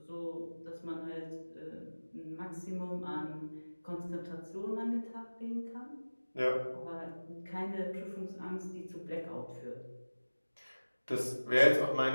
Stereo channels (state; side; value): inverted; both; correlation -1.00